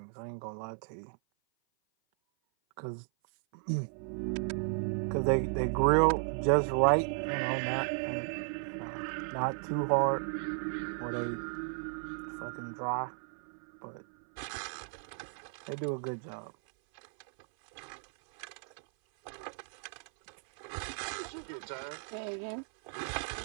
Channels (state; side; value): silent; left; 55 dB below the other